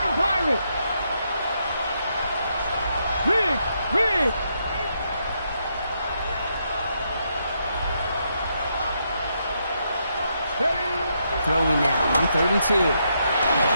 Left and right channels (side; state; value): both; inverted; correlation -0.78